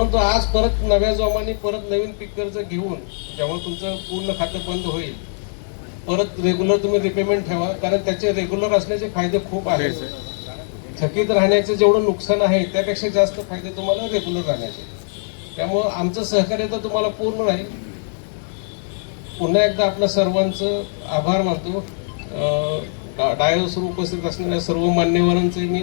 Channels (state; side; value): silent; right; digital silence